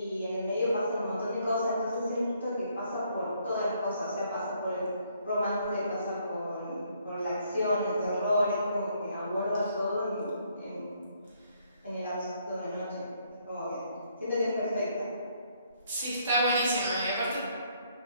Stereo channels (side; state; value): both; inverted; correlation -0.69